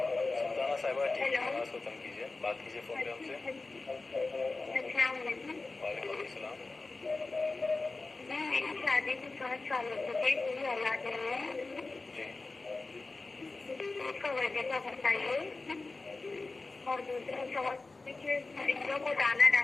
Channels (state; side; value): quieter; right; 3.5 dB